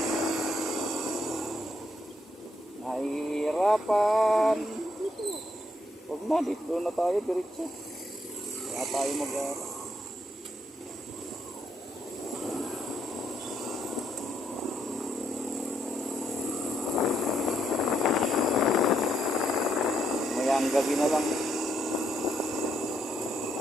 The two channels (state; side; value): normal; both; correlation 0.75